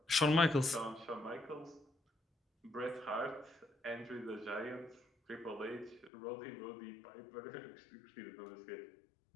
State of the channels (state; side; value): drops out; right; at 6.1 s